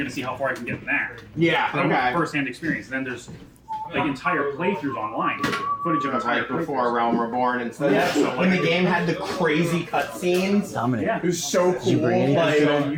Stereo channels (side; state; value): both; identical; correlation 1.00